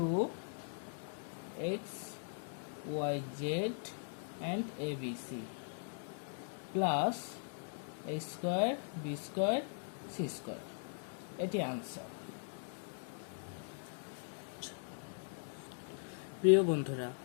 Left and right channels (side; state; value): right; silent; digital silence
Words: y z and abc plus a square b square c square. এটি আনসার। প্রিয় বন্ধুরা,